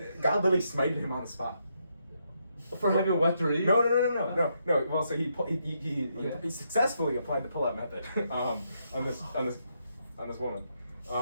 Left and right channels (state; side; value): inverted; both; correlation -0.78